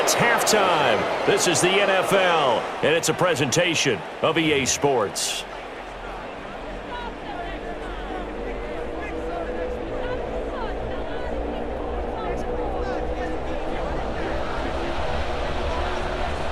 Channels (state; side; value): identical; both; correlation 1.00